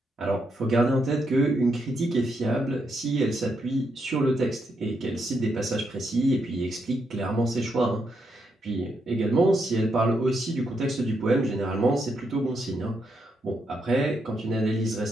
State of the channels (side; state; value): both; normal; correlation 0.80